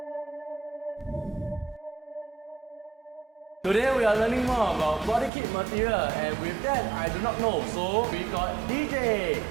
Today we are learning more about body kit material, and with that I do not know. So we got DJ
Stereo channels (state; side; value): drops out; left; at 5.3 s